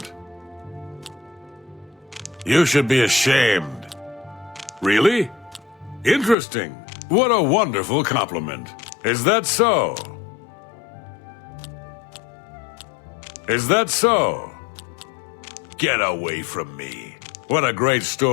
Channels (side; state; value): right; drops out; at 6.4 s